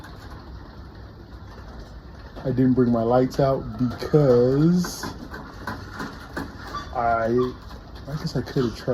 I didn't bring my lights out because I guess I could have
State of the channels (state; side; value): identical; both; correlation 1.00